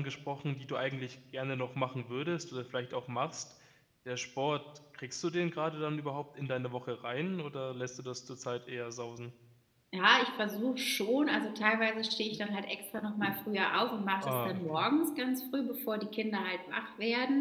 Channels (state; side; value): identical; both; correlation 1.00